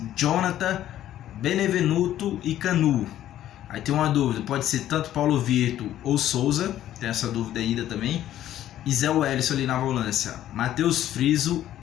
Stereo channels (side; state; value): right; quieter; 12.3 dB